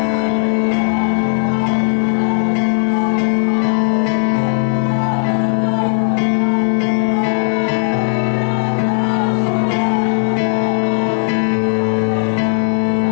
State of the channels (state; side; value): silent; right; digital silence